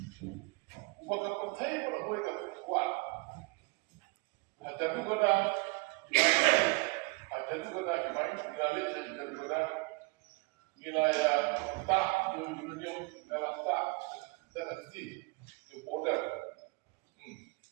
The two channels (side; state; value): left; quieter; 27.4 dB